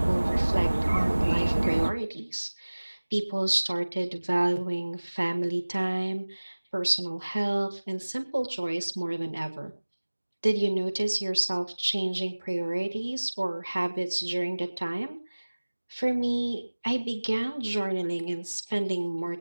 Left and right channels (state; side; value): inverted; both; correlation -1.00